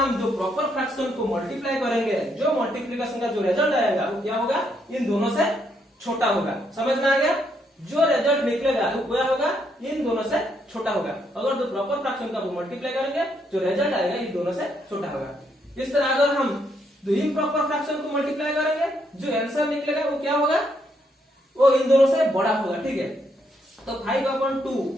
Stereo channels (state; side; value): normal; both; correlation 0.75